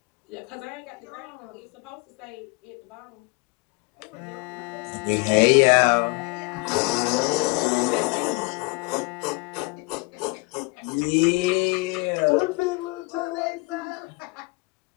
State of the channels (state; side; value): quieter; right; 27.8 dB